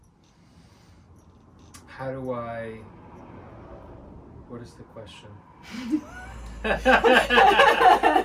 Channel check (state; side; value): identical; both; correlation 1.00